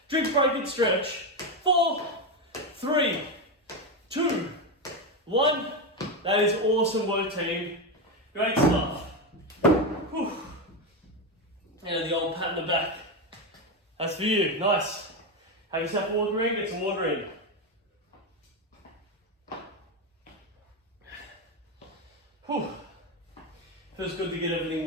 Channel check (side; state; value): both; normal; correlation 0.12